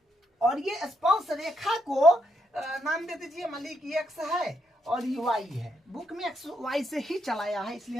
और ये स्पर्श रेखा को नाम दे दीजिए, मान लीजिए कि x है और ये y है। बुक में x y से ही चलाया है, इसलिए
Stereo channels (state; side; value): normal; both; correlation 0.78